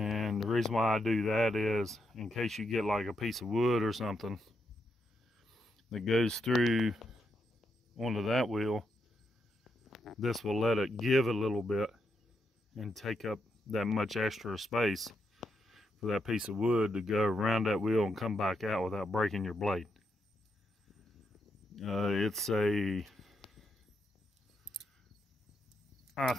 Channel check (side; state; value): both; normal; correlation 0.82